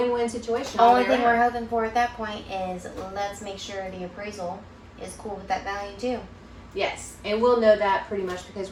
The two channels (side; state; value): both; identical; correlation 1.00